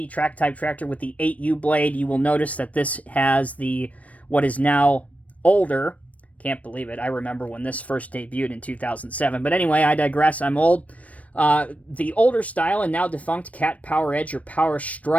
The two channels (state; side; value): late; right; 0.067 ms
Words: track type tractor with the 8U blade. You will notice that this has the what is now older. Can't believe it. I remember when this first debuted in 2007. But anyway, I digress. I'm old. The older style and now defunct CAT Power Edge or Power